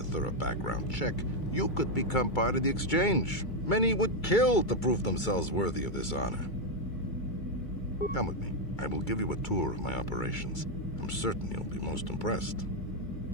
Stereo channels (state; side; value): late; right; 2.3 ms